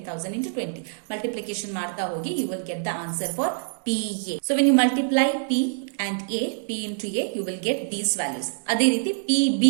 into 20. Multiplication ಮಾಡ್ತಾ ಹೋಗಿ you will get the answer for PA. So when you multiply P and A, P into A, you will get these values. ಅದೇ ರೀತಿ PB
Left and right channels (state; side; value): silent; left; digital silence